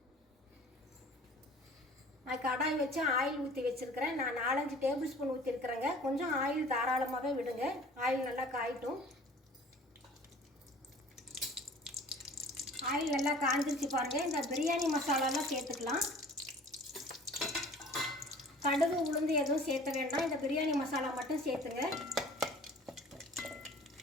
நான் கடாய் வச்சு ஆயில் ஊற்றி வச்சுருக்கிறேன். நான் 4-5 டேபிள் ஸ்பூன் ஊற்றிருக்கிறேங்க. கொஞ்சம் ஆயில் தாராளமாகவே விடுங்க. ஆயில் நல்லா காயட்டும். ஆயில் நல்லா காஞ்சிருச்சு பாருங்கள். இந்த பிரியாணி மசாலாலாம் சேர்த்துக்கலாம். கடுகு உளுந்து எதுவும் சேர்த்த வேண்டாம். இந்த பிரியாணி மசாலா மட்டும் சேர்த்துங்க.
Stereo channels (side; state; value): both; normal; correlation 0.47